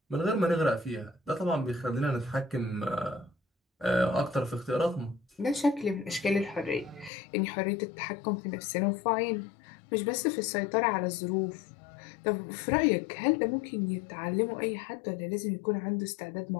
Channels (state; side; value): drops out; right; at 7.1 s